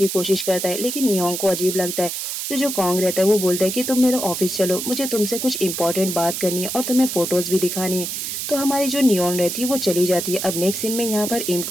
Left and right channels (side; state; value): right; noise; hiss, 4 dB below the sound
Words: कोशिश करता है, लेकिन नियोन को अजीब लगता है। तो जो कॉन्ग रहता है वो बोलता है कि तुम मेरे ऑफिस चलो, मुझे तुमसे कुछ इंपॉर्टेंट बात करनी है और तुम्हें फोटोज भी दिखानी है। तो हमारी जो नियोन रहती है वो चली जाती है। अब नेक्स्ट सीन में यहाँ पर इम